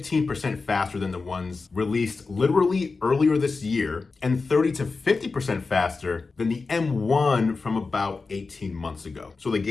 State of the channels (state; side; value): quieter; right; 4.2 dB